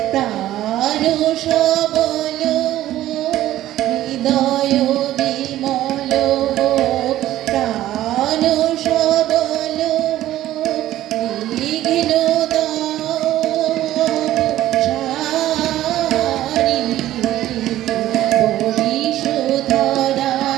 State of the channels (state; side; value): quieter; left; 14.0 dB